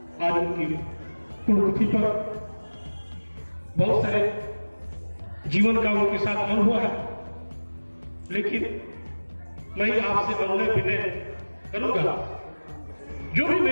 आज उनकी पुण्यतिथि पर बहुत सारे जीवन का उनके साथ अनुभव है, लेकिन मैं आपसे अनुनय विनय करूंगा, जो भी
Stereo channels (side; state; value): both; inverted; correlation -1.00